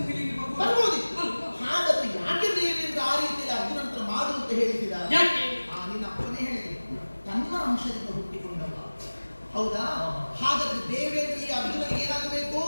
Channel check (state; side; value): inverted; both; correlation -1.00